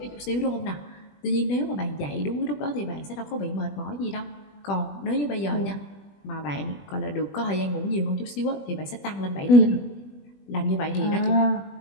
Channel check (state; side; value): late; right; 20 ms